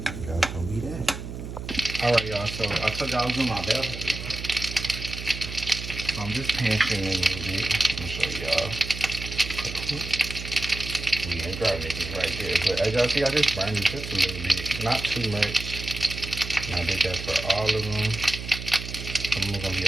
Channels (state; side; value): noise; right; hum, 8 dB below the sound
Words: that's gonna be that. Alright, y'all, so I told y'all I was doing my bell peppers. So I'm just pan searing it a little bit. Let me show y'all. We ain't grabbing it right there, but as y'all see, I just burned it just a little bit, not too much. And I did that for all of them. Some of them are gonna be